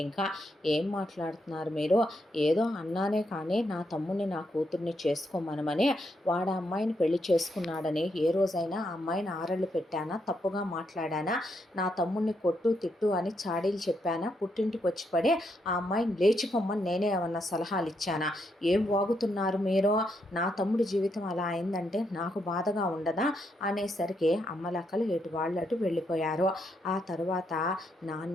ఇంకా ఏం మాట్లాడుతున్నారు మీరు? ఏదో అన్నానే కానీ నా తమ్ముడిని నా కూతుర్ని చేసుకోమనమని, వాడు అమ్మాయిని పెళ్లి చేసుకున్నాడని ఏ రోజైనా ఆ అమ్మాయిని ఆరళ్ళు పెట్టానా? తప్పుగా మాట్లాడానా? నా తమ్ముడిని కొట్టు తిట్టు అని చాడీలు చెప్పానా? పుట్టింటికి వచ్చి పడి ఆ అమ్మాయిని లేచిపోమ్మని నేనే ఏమన్నా సలహాలు ఇచ్చానా? ఏం వాగుతున్నారు మీరు? నా తమ్ముడి జీవితం అలా అయిందంటే నాకు బాధగా ఉండదా అనేసరికి అమ్మలక్కలు ఎటు వాళ్ళు అటు వెళ్ళిపోయారు. ఆ తరువాత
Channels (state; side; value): normal; both; correlation 0.79